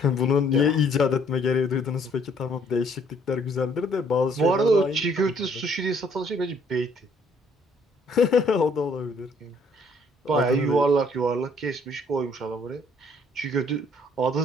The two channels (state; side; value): normal; both; correlation 0.63